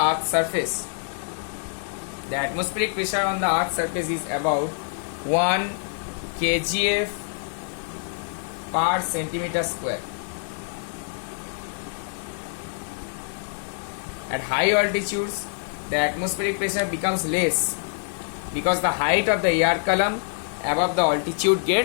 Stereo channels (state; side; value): silent; right; digital silence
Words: earth's surface. The atmospheric pressure on the earth's surface is about 1 kgf per centimeter square. At high altitudes, the atmospheric pressure becomes less because the height of the air column above the altitude